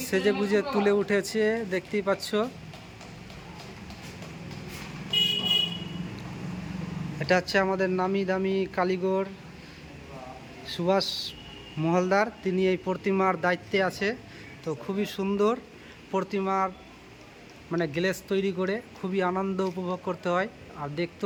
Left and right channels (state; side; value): identical; both; correlation 1.00